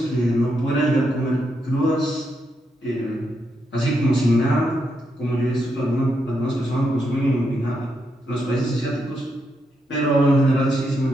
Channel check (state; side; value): normal; both; correlation 0.81